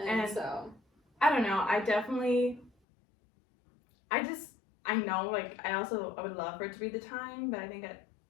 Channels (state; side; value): drops out; right; at 2.7 s